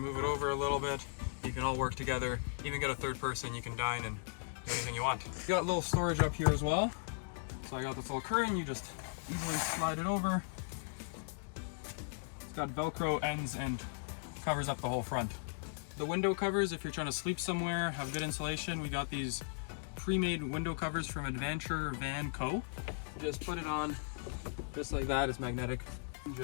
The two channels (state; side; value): silent; right; digital silence